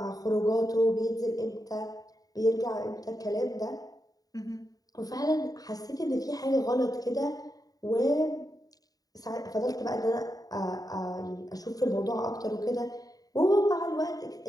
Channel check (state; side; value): late; right; 0.18 ms